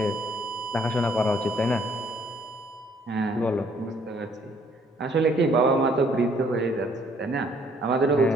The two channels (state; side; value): normal; both; correlation 0.63